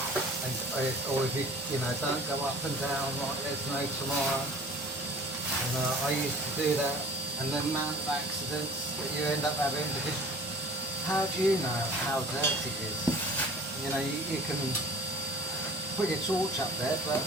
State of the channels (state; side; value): normal; both; correlation 0.45